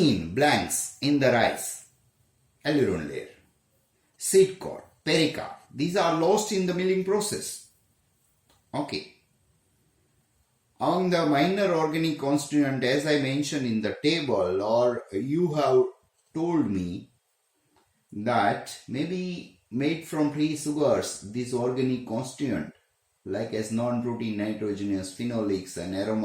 blanks in the rice. Aileron layer, seed cord, pericarp. These are lost in the milling process. Okay. On the minor organic constituent, as I mentioned in the table, or you have told me that maybe made from free sugars, this organic constituent, like as non-protein nitrogenous phenolics and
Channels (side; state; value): both; identical; correlation 1.00